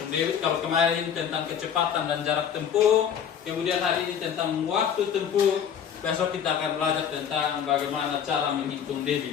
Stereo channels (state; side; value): quieter; right; 8.2 dB